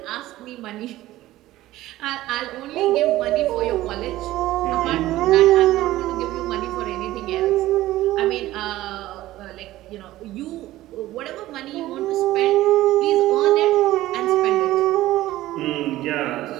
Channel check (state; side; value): quieter; left; 15.9 dB